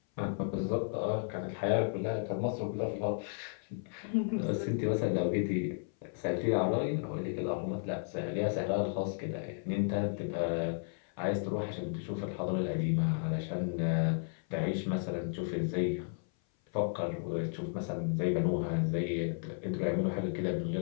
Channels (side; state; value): right; silent; 55 dB below the other